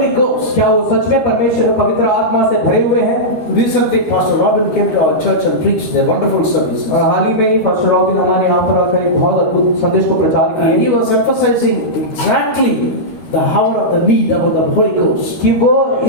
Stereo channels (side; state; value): right; late; 13 ms